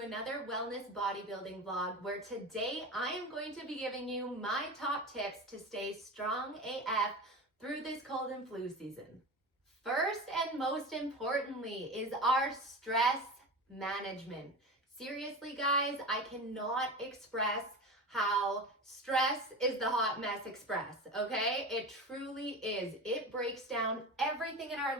wellness bodybuilding vlog where today I am going to be giving you my top tips to stay strong AF through this cold and flu season. First and most importantly is our stress management. Seriously, guys, I cannot express how stress is the hot mess express, okay? It truly is. It breaks down everything in our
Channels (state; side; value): normal; both; correlation 0.27